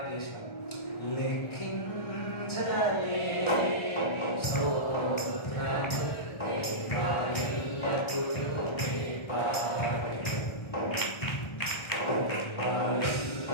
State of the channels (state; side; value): late; right; 1.3 ms